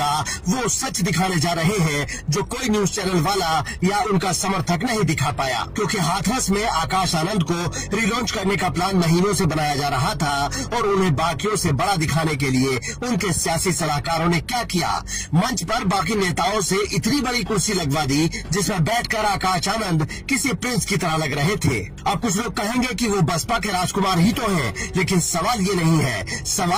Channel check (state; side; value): identical; both; correlation 1.00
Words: वो सच दिखाने जा रहे हैं जो कोई न्यूज चैनल वाला या उनका समर्थक नहीं दिखा पाया, क्योंकि हाथरस में आकाश आनंद को रिलॉन्च करने का प्लान महीनों से बनाया जा रहा था और उन्हें बाकियों से बड़ा दिखाने के लिए उनके सियासी सलाहकारों ने क्या किया, मंच पर बाकी नेताओं से इतनी बड़ी कुर्सी लगवा दी जिसमें बैठकर आकाश आनंद किसी प्रिंस की तरह लग रहे थे। अब कुछ लोग कहेंगे कि वो बसपा के राजकुमार ही तो हैं, लेकिन सवाल ये नहीं है।